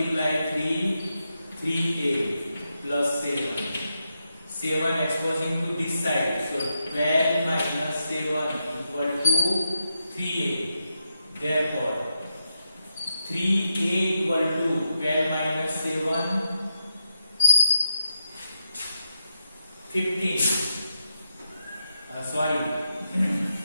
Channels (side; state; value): both; inverted; correlation -0.86